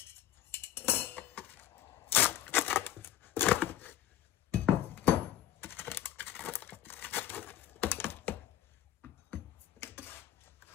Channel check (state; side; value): quieter; right; 11.9 dB